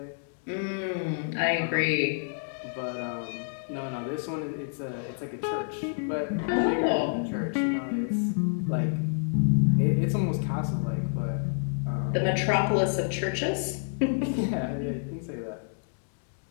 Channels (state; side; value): silent; right; digital silence